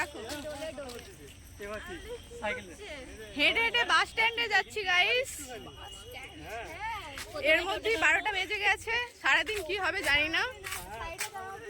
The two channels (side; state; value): both; identical; correlation 1.00